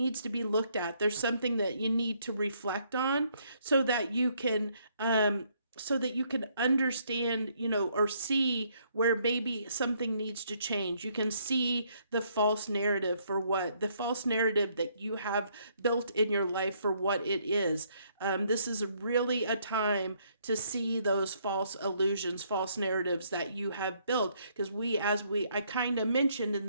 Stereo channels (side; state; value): both; inverted; correlation -0.69